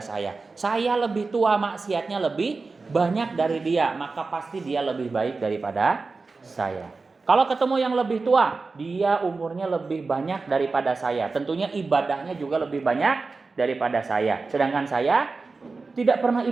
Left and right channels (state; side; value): quieter; left; 4.0 dB